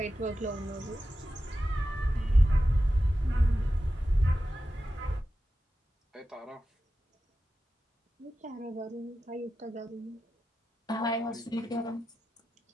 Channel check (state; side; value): normal; both; correlation 0.92